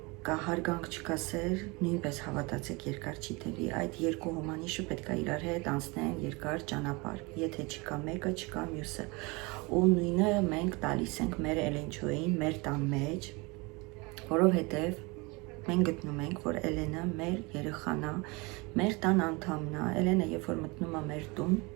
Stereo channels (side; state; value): left; quieter; 26.6 dB